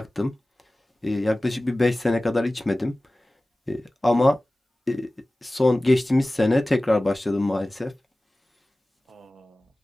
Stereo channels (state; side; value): normal; both; correlation 0.97